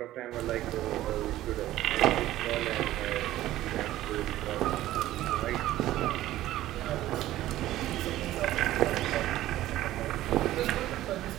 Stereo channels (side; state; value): left; quieter; 14.7 dB